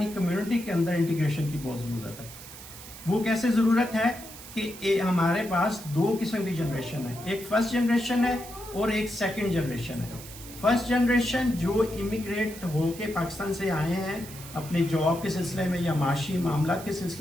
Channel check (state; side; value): noise; right; hiss, 15 dB below the sound